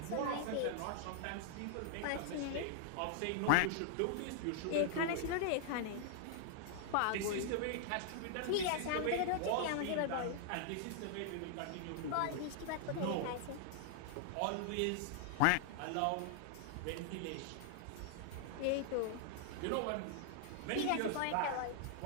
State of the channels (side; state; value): both; different; correlation -0.01